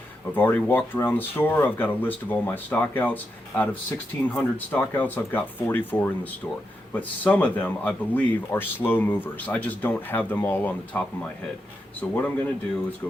I've already walked around the store. I've got a list of all my stockouts. Out of 1,600 stockouts, I've got 44 in the store. But some of them, I believe, are slow movers. I just don't have them all on the top of my head. So what I'm going to do is go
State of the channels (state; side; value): normal; both; correlation 0.85